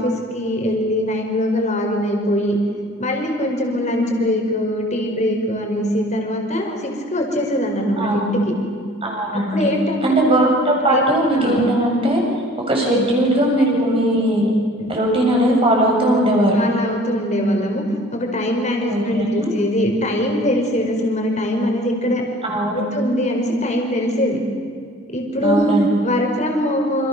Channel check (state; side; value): normal; both; correlation 0.49